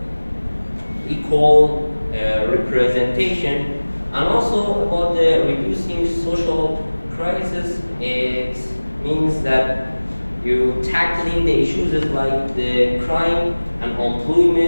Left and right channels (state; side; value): inverted; both; correlation -1.00